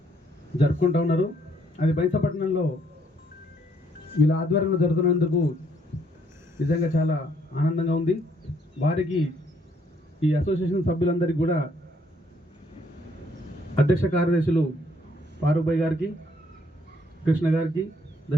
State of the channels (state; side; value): normal; both; correlation 0.68